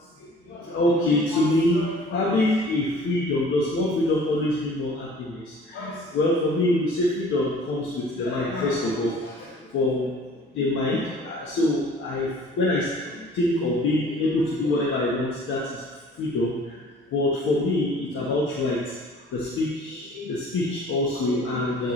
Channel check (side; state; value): both; normal; correlation 0.49